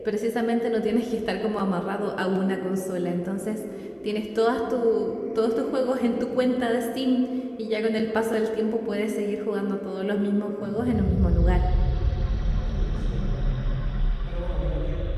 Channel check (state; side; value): identical; both; correlation 1.00